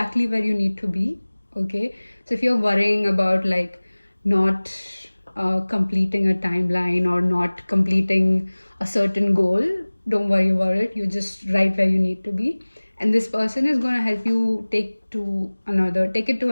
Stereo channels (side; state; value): both; inverted; correlation -1.00